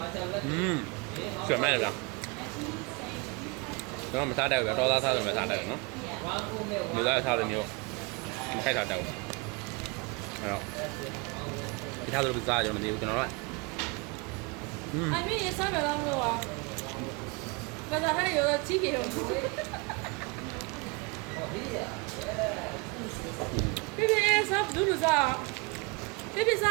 tablet. ဆွေမိုက်တယ်ဗျကျွန်တော်မစားတတ်ဘူးဗျတော်သားစားလို့မစားတတ်ဘူးနော် One full meal. လူသားစားတဲ့မျိုးမခိုက်တာတတ်ဘူးအဲ့တော့ဒီထားလို့စားကြတော့မသိဘူးကျွန်တော်တို့ I mean, it's not a long road. But I had a ticket. Baby, it's up, do that. Baby, it's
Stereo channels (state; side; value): quieter; left; 28.5 dB